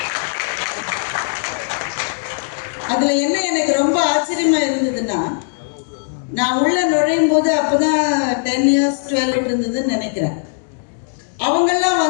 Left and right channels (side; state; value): right; silent; digital silence